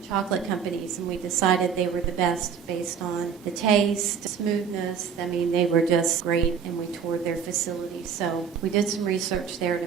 chocolate companies, and we decided they were the best based on the taste, smoothness. I mean, they were just great, and we toured their facilities. So we did some research there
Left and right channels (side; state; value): left; quieter; 7.1 dB